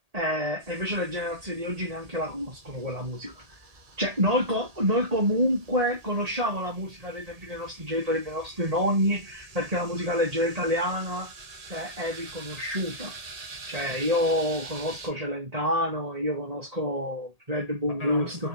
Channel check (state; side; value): late; left; 1.8 ms